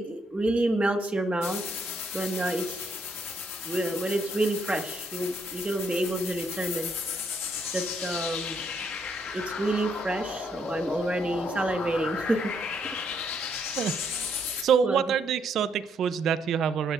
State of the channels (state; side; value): normal; both; correlation 0.73